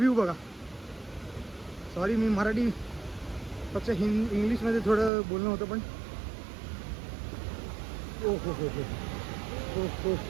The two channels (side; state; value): left; drops out; at 5.1 s